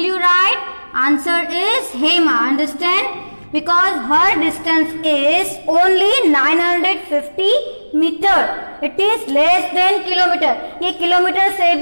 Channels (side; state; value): both; inverted; correlation -1.00